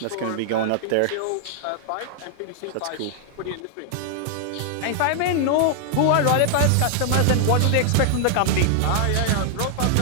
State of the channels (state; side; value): different; both; correlation 0.00